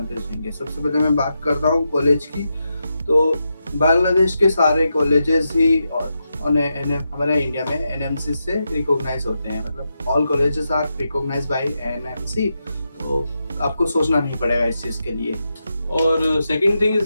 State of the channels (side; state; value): both; inverted; correlation -0.86